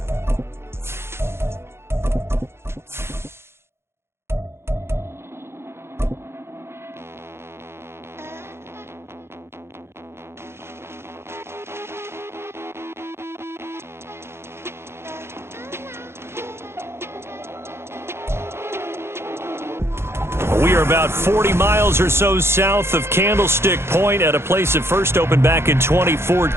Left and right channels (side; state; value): left; late; 0.12 ms